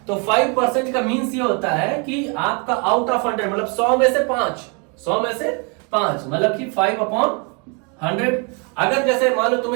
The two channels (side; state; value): left; quieter; 34.4 dB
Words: तो 5% का मीन्स ये होता है कि आपका आउट ऑफ 100 मतलब 100 में से 5, 100 में से 5 मतलब कि 5/100। अगर जैसे मान लो